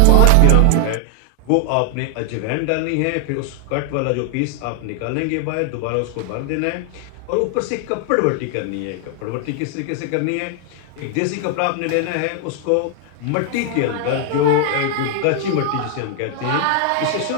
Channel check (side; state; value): both; different; correlation 0.00